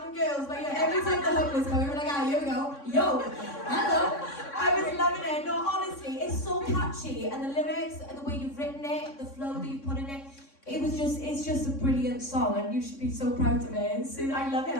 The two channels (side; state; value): right; late; 3.6 ms